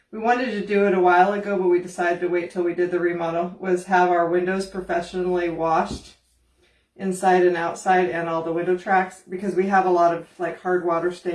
wanted to do it a while ago, but we decided to wait till we did the remodel, was have our windows professionally washed inside and outside, and all the window tracks, because we have a lot of like hard water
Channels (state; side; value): identical; both; correlation 1.00